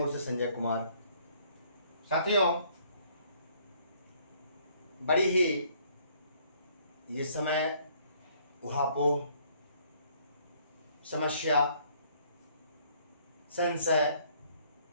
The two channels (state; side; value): inverted; both; correlation -0.63